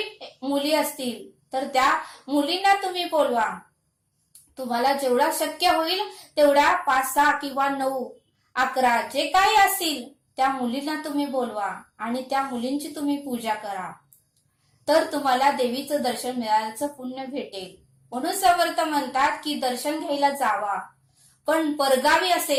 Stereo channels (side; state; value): both; identical; correlation 1.00